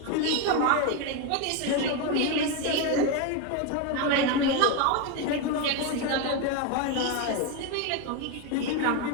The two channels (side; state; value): both; different; correlation 0.02